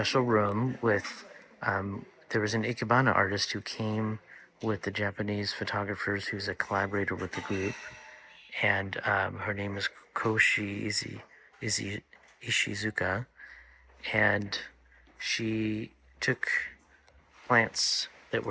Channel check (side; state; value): both; identical; correlation 1.00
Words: room with. There was an Ikebana artist who came with the Japanese photographers, who's a collaborator with the group, and her name is Koshi Ishizuka, and she took plants that